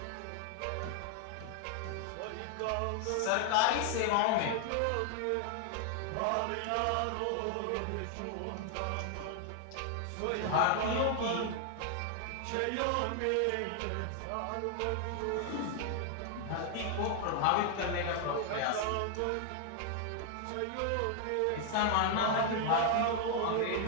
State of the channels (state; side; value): different; both; correlation 0.00